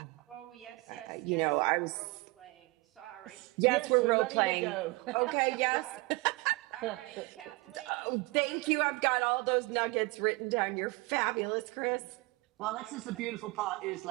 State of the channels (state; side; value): quieter; left; 24.8 dB